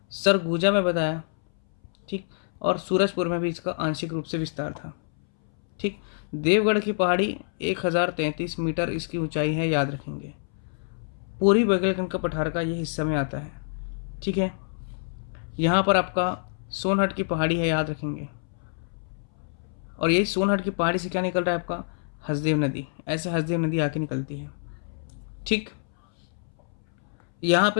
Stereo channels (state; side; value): silent; right; 61 dB below the other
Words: सरगुजा में बताया। ठीक, और सूरजपुर में भी इसका आंशिक रूप से विस्तार था। ठीक, देवगढ़ की पहाड़ी 1033 मीटर इसकी ऊंचाई है, याद रखेंगे। पूरी बघेलखंड का पठार का ये हिस्सा में आता है। ठीक है, यहाँ पर आपका सोनहट की पहाड़ी है, याद रखेंगे। और यही सोनहट की पहाड़ी से क्या निकल रहा है आपका, हसदेव नदी। ऐसे हसदेव नदी आके निकलती है। ठीक, यहाँ